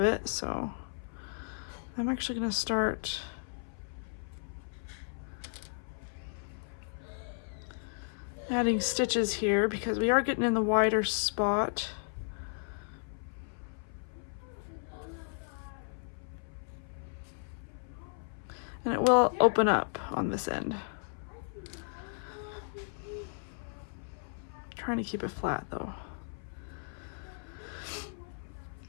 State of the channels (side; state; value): right; silent; 55 dB below the other